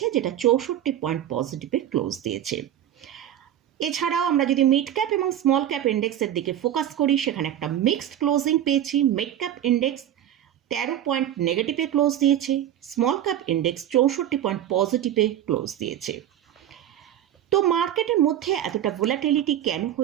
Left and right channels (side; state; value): left; quieter; 11.2 dB